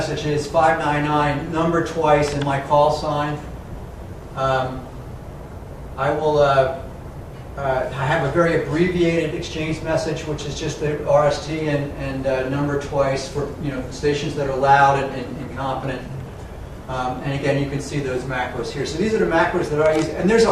is 599, number twice, and my call sign. I will. I have a very abbreviated exchange message, which is just the RST and number twice for stations that are loud and competent. And again, you can see those macros here. So these are the macros that I use, and there's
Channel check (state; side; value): identical; both; correlation 1.00